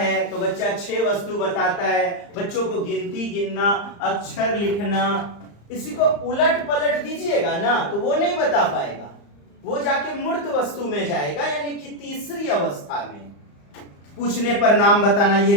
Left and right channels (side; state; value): right; late; 35 ms